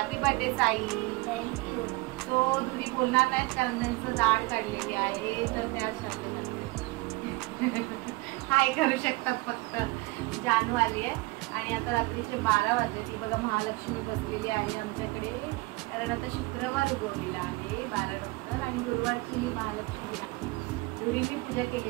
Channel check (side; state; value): left; quieter; 23.8 dB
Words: birthday Sai. Thank you. तो धुरी बोलणार नाहीत कारण त्यांचं दाढ काढलेली आहे, तर त्याच शब्द करते. हाय करू शकतात फक्त. जानू आली आहे आणि आता रात्रीचे 12 वाजले. ती बघा महालक्ष्मी बसलेली आहे आमच्याकडे, कारण आता शुक्रवार उगवलेला आहे 12 नंतर आणि गुरुवारची ही महालक्ष्मी आहे. धुरीची पूजा